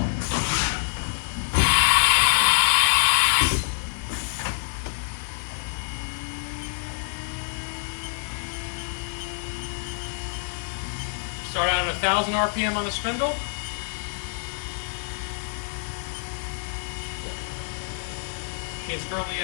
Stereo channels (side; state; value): right; silent; digital silence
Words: Start out at 1,000 RPM on the spindle. Machine's currently